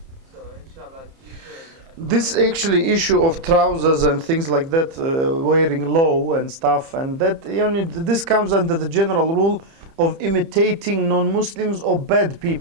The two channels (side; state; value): left; late; 30 ms